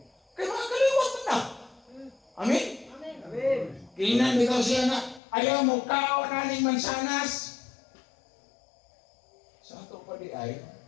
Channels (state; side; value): drops out; right; at 5.2 s